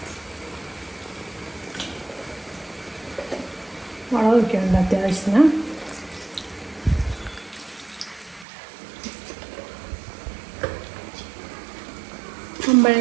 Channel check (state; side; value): drops out; left; at 8.5 s